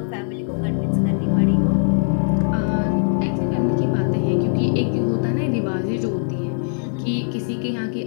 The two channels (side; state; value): right; silent; 65 dB below the other